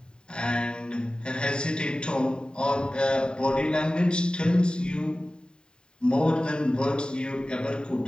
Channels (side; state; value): right; late; 0.049 ms